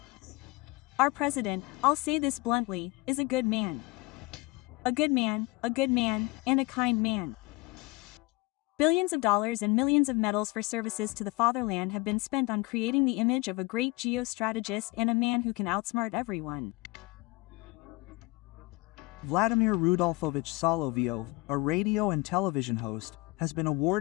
Our president, I'll say this bluntly, is a good man. A good man, and a kind man. Billions of dollars and millions of medals for services to the fatherland have been spent on creating the image of a great geostrategist and a man who can outsmart everyone. Vladimir Rudolfovich Solovyov, a radio and television host, has been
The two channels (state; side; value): quieter; right; 23.4 dB